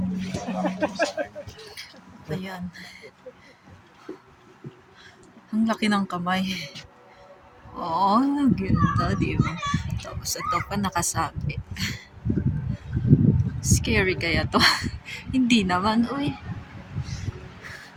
Ayan. Ang laki ng kamay. Oo, ganda, di ba? Tapos ito pa nakasabi. Scary kaya to? Hindi naman, uy.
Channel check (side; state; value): both; identical; correlation 1.00